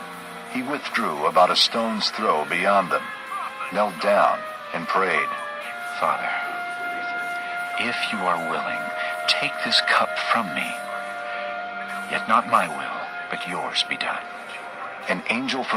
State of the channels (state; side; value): identical; both; correlation 1.00